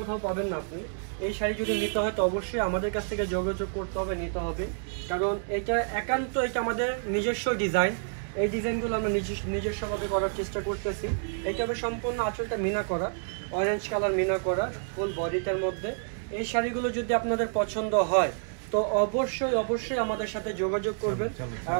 পাবেন না আপনি। এই শাড়ি যদি নিতে হয় তো অবশ্যই আমাদের কাছ থেকে যোগাযোগ করতে হবে, নিতে হবে। কারণ এটা একান্ত এটা আমাদের নিজস্ব ডিজাইন। এই ডিজাইনগুলো আমরা নিজস্বভাবে করার চেষ্টা করতেছি। এটা হবে সম্পূর্ণ আঁচলটা মিনা করা, অরেঞ্জ কালার মিনা করা ফুল বডিটার মধ্যে। এই শাড়িগুলো যদি আপনাদের পছন্দ হয় তো অবশ্যই আমাদের সাথে যোগাযোগ করবেন। আর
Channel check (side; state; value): left; silent; digital silence